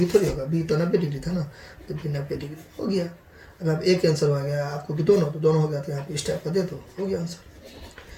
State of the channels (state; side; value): identical; both; correlation 1.00